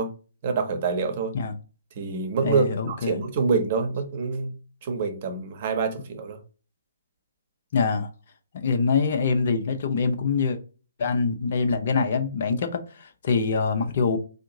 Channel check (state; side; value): inverted; both; correlation -0.60